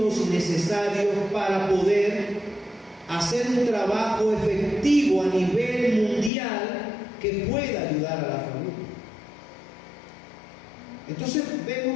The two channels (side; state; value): right; drops out; at 6.3 s